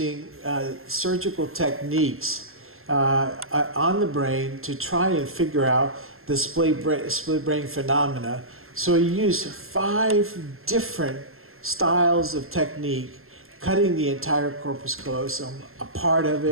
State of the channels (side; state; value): left; late; 0.62 ms